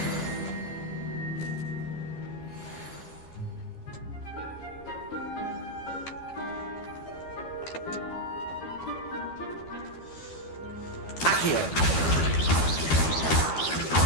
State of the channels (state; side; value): late; right; 12 ms